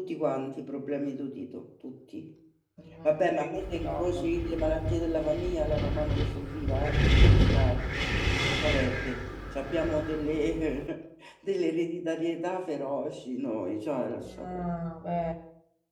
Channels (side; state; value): both; identical; correlation 1.00